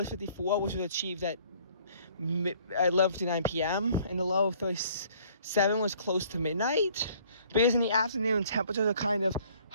54, which was achieved at 11:59 p.m., and the low of 37 was close to midnight, because in the afternoon, temperatures are kind of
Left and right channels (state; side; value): inverted; both; correlation -0.58